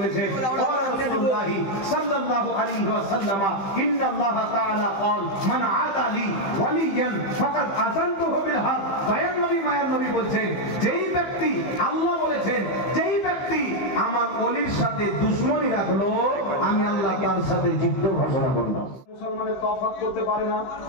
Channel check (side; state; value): right; late; 15 ms